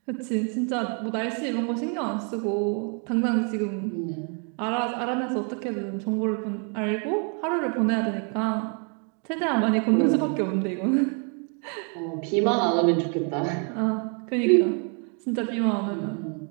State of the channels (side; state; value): left; quieter; 39.5 dB